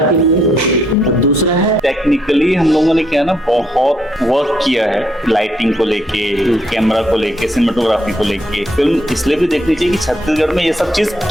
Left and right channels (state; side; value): normal; both; correlation 0.73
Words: के लिए और दूसरा है टेक्निकली हम लोगों ने क्या है ना, बहुत वर्क किया है लाइटिंग को लेके, कैमरा को लेके, सिनेमेटोग्राफी को लेके। फिल्म इसलिए भी देखनी चाहिए कि छत्तीसगढ़ में ये सब चीज